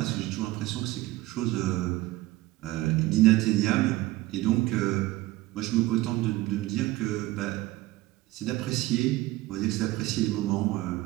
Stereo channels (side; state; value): left; quieter; 17.8 dB